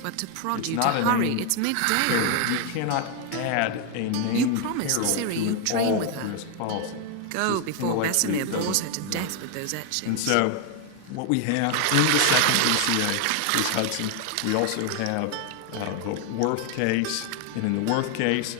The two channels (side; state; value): both; different; correlation 0.00